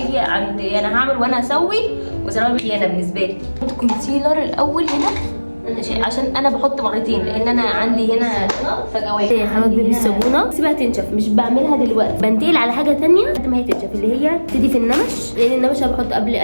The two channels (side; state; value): both; inverted; correlation -1.00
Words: عند انا هعمل وانا هسوي وسلام. خيانه بالنسبه لي. احط كونسيلر الاول هنا عشان انا بحط مرتين، لان انا عندي هنا فجوات. حواجبي بالصابونه سيبها تنشف، مش بعملها دلوقتي، بنتقل على حاجه تانية لحد ما هي تنشف، اللي هي تبتدي في النمش. لان النمش انا بحط قبل